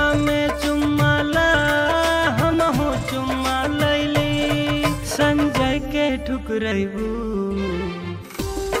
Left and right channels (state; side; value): identical; both; correlation 1.00